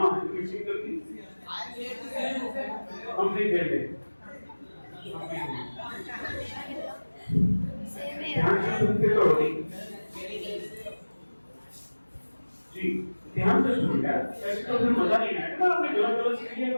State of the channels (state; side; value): inverted; both; correlation -1.00